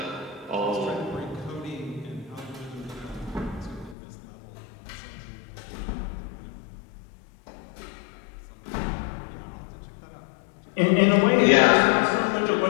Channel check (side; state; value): right; drops out; at 4.0 s